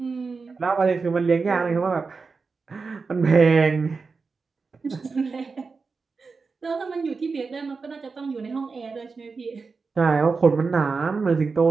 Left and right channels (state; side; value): quieter; left; 4.6 dB